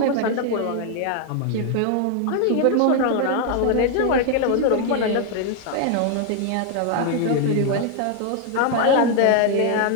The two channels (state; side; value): different; both; correlation 0.00